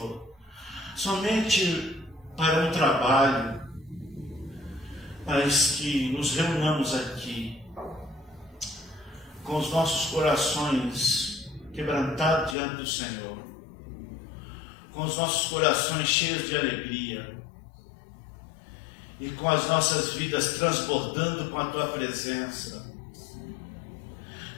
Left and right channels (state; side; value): drops out; right; at 12.6 s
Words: somente para um trabalho, mas que nos reunamos aqui com os nossos corações quebrantados diante do Senhor, com os nossos corações cheios de alegria e com as nossas vidas transbordando com a Tua presença.